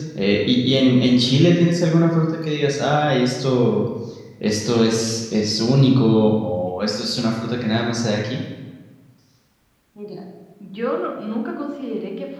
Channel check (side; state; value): both; identical; correlation 1.00